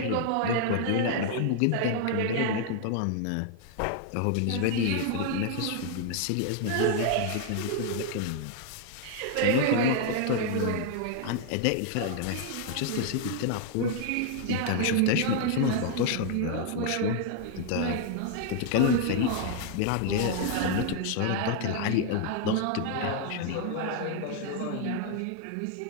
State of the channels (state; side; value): different; both; correlation 0.00